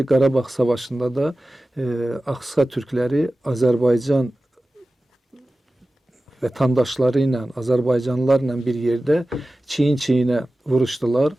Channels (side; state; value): both; normal; correlation 0.96